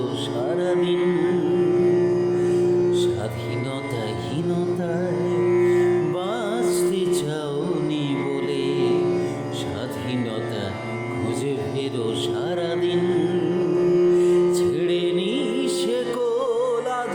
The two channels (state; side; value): identical; both; correlation 1.00